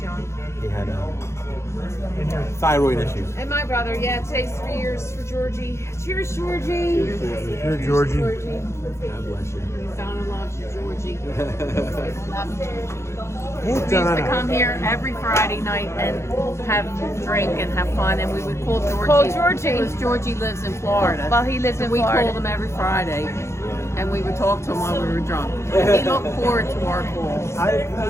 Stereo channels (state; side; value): late; right; 0.13 ms